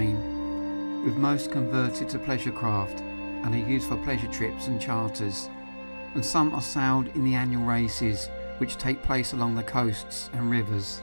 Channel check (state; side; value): inverted; both; correlation -1.00